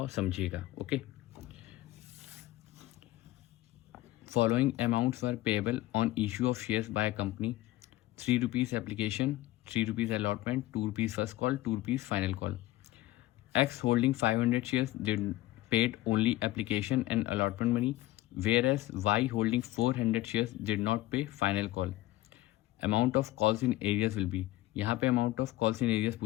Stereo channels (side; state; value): right; quieter; 16.7 dB